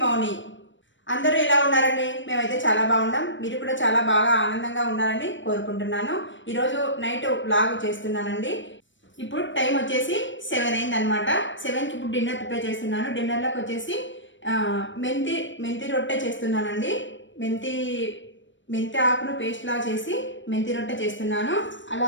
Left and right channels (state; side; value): late; right; 0.55 ms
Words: మౌని. అందరూ ఎలా ఉన్నారండి? మేమైతే చాలా బాగున్నాం. మీరు కూడా చాలా బాగా ఆనందంగా ఉన్నారని కోరుకుంటున్నాను. ఈరోజు నైట్ వ్లాగ్ చేస్తున్నానండి. ఇప్పుడు టైం వచ్చేసి 7 అయిందనమాట. 7కి ఇప్పుడు డిన్నర్ ప్రిపేర్ చేస్తున్నాను. డిన్నర్లోకి వచ్చేసి మెంతి రొట్టె చేస్తున్నానండి. మెంతి ఆకును పేస్ట్లా చేసి మెంతి రొట్టె చేస్తున్నాను.